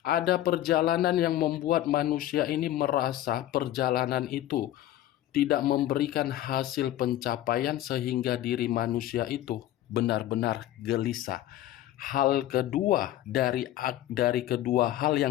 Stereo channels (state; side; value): quieter; right; 13.5 dB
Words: Ada perjalanan yang membuat manusia ini merasa perjalanan itu tidak memberikan hasil pencapaian sehingga diri manusia itu benar-benar gelisah. Hal kedua dari kedua hal